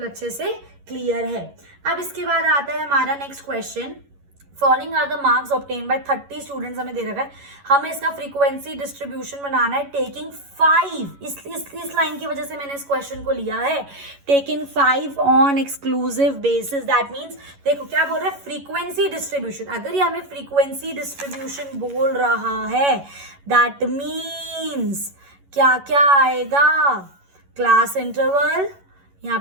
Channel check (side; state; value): left; late; 11 ms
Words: अच्छे से क्लियर है। अब इसके बाद आता है हमारा next question, following are the marks obtained by 30 students, हमें दे रखा है हमें इसका फ्रीक्वेंसी डिस्ट्रीब्यूशन बनाना है टेकिंग 5, इस लाइन की वजह से मैंने इस क्वेश्चन को लिया है, taking 5 on exclusive basis. That means देखो क्या बोल रहा है, फ्रीक्वेंसी डिस्ट्रीब्यूशन। अगर ये हमें फ्रीक्वेंसी डिस्ट्रीब्यूशन बोल रहा है दैट मीन्स क्या क्या आएगा, क्लास इंटरवल, यहाँ